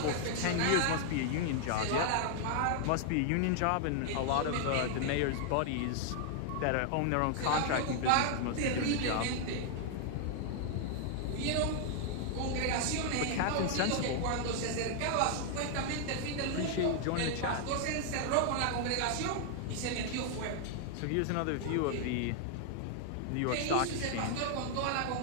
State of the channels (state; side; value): different; both; correlation 0.00